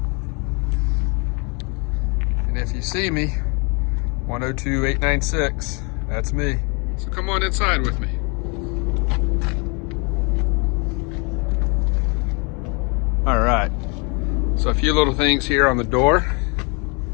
And if you see me, 102-896, that's me. So come on inside with me. All right, so a few little things here on the door.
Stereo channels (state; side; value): quieter; right; 32.5 dB